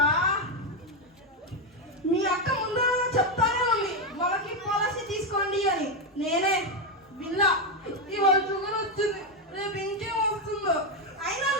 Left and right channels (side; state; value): both; normal; correlation 0.06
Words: మీ అక్క ముందు చెప్తానే ఉంది వాళ్ళకి పాలసీ తీసుకోండి అని. నేనే విన్నా, ఇవాళ షుగర్ వచ్చింది, రేపు ఇంకేం వస్తుందో. అయినా